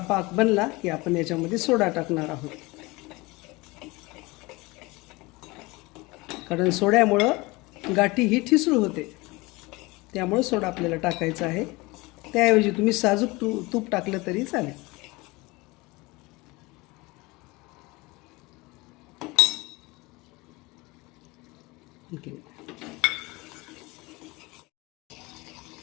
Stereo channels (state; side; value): quieter; right; 23.4 dB